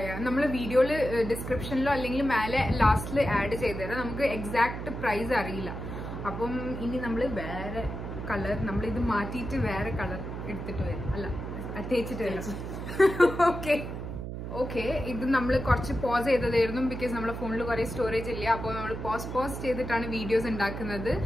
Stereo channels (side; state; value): right; noise; hum, 7 dB below the sound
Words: നമ്മള് വീഡിയോയില് ഡിസ്ക്രിപ്ഷനിലോ അല്ലെങ്കിൽ മേലെ ലാസ്റ്റില് ആഡ് ചെയ്തുതരാം. നമുക്ക് എക്സാക്ട് പ്രൈസ് അറിയില്ല. അപ്പം ഇനി നമ്മള് വേറെ കളർ, നമ്മളിത് മാറ്റിയിട്ട് വേറെ കളർ എടുത്തിട്ട് വരും, അല്ല തേച്ചിട്ട് വരും. ഓക്കെ, ഇത് നമ്മൾ കുറച്ച് പോസ് ചെയ്തതായിരുന്നു, ബിക്കോസ് നമ്മുടെ ഫോണിൽ കുറെ സ്റ്റോറേജ് ഇല്ല. അപ്പോൾ നമ്മൾ പോസ് ചെയ്തിട്ടാണ് വീഡിയോസ് ഉണ്ടാക്കുന്നത്.